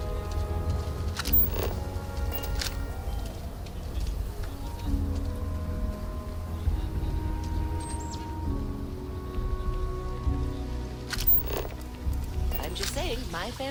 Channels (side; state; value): both; identical; correlation 1.00